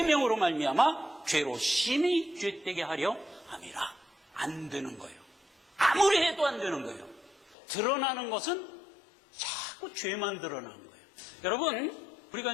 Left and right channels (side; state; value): right; drops out; at 7.6 s